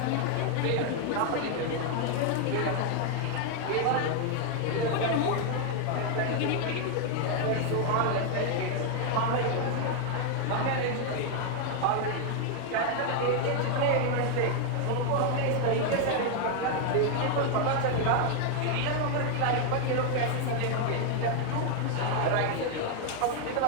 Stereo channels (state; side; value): different; both; correlation 0.00